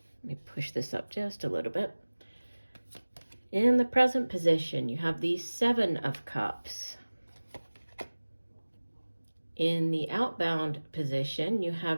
Let me push this up just a little bit. In the present position, you have the 7 of Cups. In the outbound position, you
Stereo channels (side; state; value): both; inverted; correlation -1.00